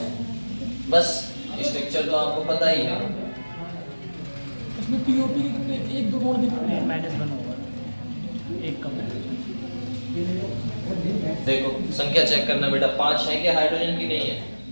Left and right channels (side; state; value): both; inverted; correlation -1.00